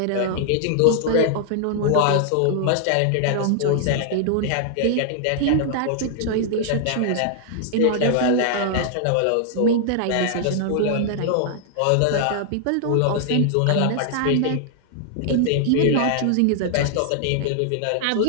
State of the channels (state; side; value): different; both; correlation -0.01